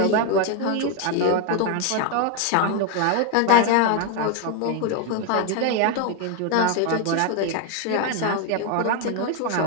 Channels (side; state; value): both; different; correlation 0.01